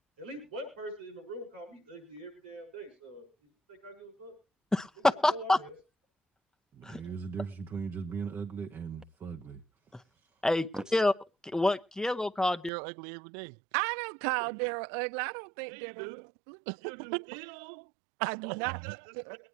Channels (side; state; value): left; drops out; at 12.7 s